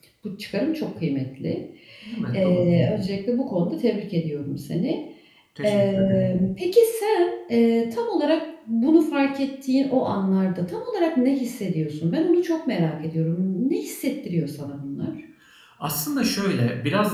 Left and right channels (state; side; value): identical; both; correlation 1.00